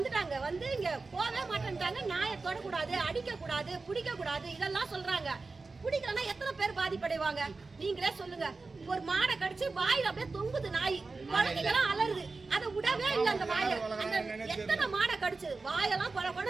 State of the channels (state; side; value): quieter; left; 3.9 dB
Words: வந்து இங்க போவே மாட்டேன்ட்டாங்க. நாயை தொடக்கூடாது, அடிக்க கூடாது, பிடிக்க கூடாது இதெல்லாம் சொல்றாங்க. பிடிக்கலன்னா எத்தனை பேர் பாதிப்படைவாங்க நீங்களே சொல்லுங்க. ஒரு மாடை கடிச்சு வாயில அப்படியே தொங்குது நாய். குழந்தைகளாம் அலருது. அதை விடவே இல்லை அந்த வாயை. அந்த எத்தனை மாடை கடிச்சு வாயெல்லாம் கொட